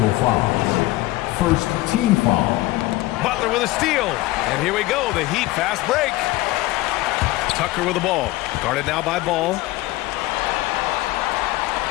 foul. First team foul. Butler with a steal. And here we go, the Heat fast break. Tucker with the ball. Guarded now by Ball.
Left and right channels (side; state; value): right; quieter; 18.5 dB